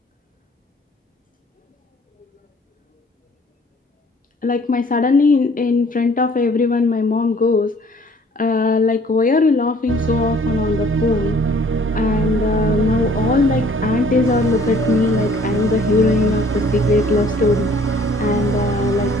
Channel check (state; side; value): normal; both; correlation 0.56